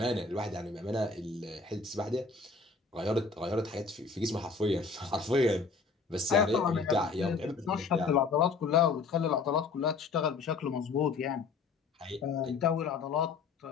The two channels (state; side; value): quieter; right; 4.6 dB